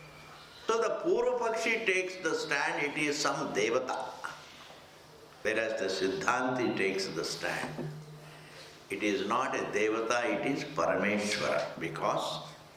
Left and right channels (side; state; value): both; identical; correlation 1.00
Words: So the Purvapakshi takes the stand, it is some Devata. Whereas the Siddhanti takes the stand. It is not a Devata, it is Parameshwara, because